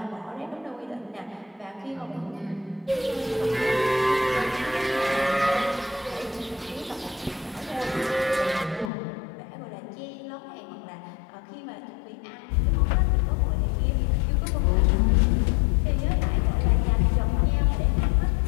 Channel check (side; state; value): right; drops out; at 8.9 s